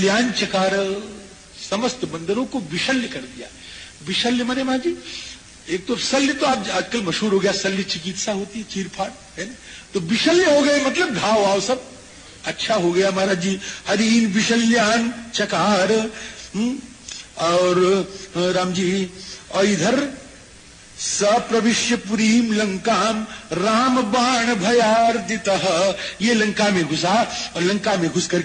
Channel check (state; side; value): identical; both; correlation 1.00